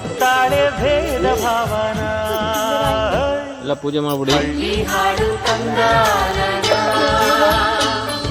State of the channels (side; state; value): both; identical; correlation 1.00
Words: ಭೇದ ಭಾವನ. ಎಲ್ಲ ಪೂಜೆ ಮಾಡ್ಬಿಡಿ. ಹಳ್ಳಿ ಹಾಡು ತಂದ